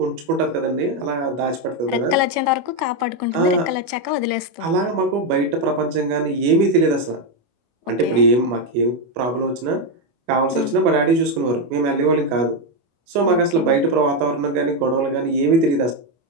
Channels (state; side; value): late; left; 25 ms